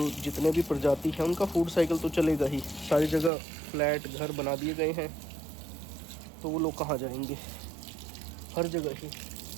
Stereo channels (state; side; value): drops out; left; at 3.3 s